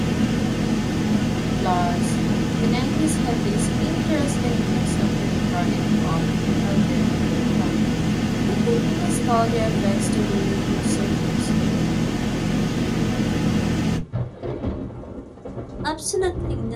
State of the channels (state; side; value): identical; both; correlation 1.00